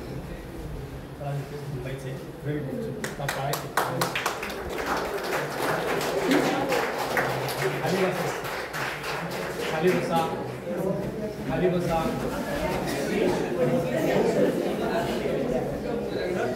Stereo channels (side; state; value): both; identical; correlation 1.00